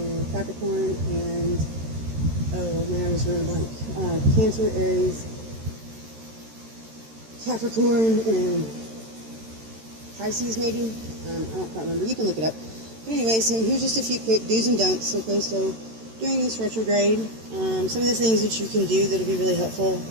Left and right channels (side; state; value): left; late; 13 ms